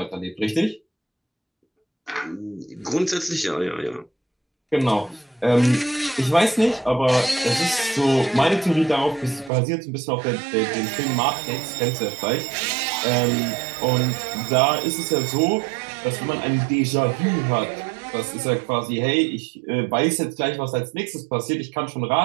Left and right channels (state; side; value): drops out; left; at 9.5 s